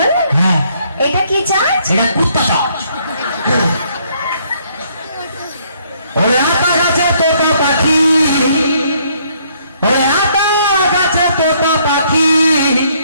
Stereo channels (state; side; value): inverted; both; correlation -0.67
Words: হ্যাঁ এটা কি চার্জ? এটা কুত্তা চার্জ। ওরে আতা গাছে তোতা পাখি, ওরে আতা গাছে তোতা পাখি,